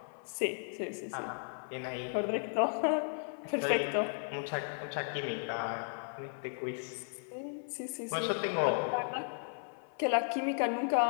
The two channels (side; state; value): right; silent; 54 dB below the other